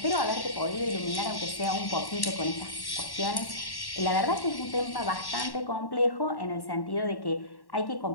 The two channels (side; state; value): right; late; 1.1 ms